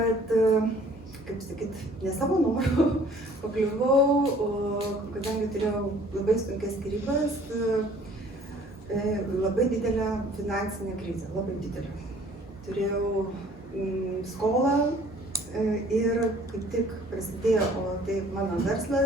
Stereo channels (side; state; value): both; normal; correlation 0.54